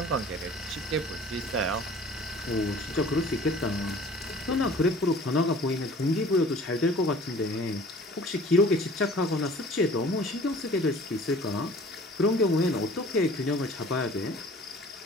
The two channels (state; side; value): normal; both; correlation 0.48